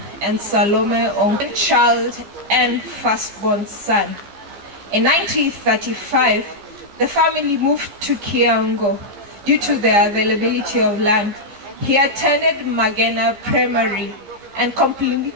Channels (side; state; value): left; late; 15 ms